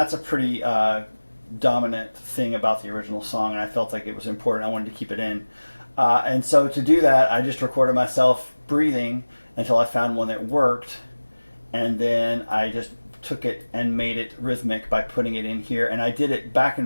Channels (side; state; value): both; inverted; correlation -1.00